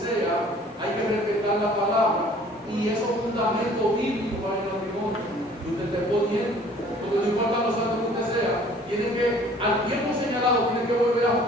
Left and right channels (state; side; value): normal; both; correlation 0.53